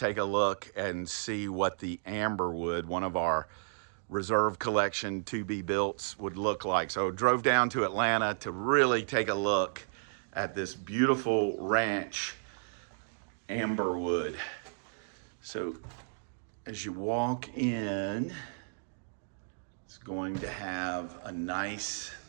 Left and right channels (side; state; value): left; silent; digital silence